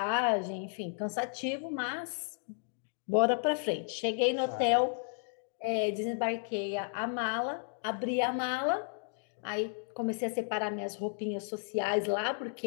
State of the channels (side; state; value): right; silent; 56 dB below the other